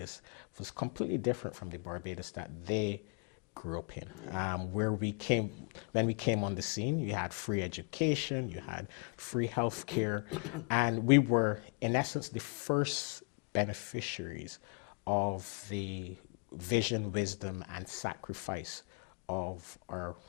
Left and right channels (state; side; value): quieter; right; 37.0 dB